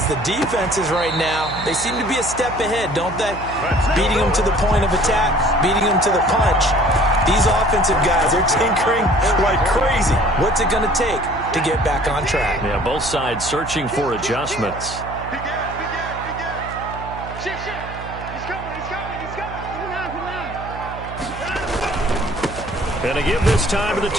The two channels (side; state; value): right; noise; hum, 12 dB below the sound